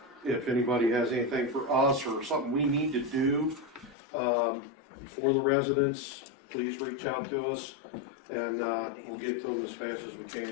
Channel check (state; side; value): drops out; right; at 4.0 s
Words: If anybody has anything for us or something we need to do, for the residents, please reach out to us and, we'll get to them as fast as we can.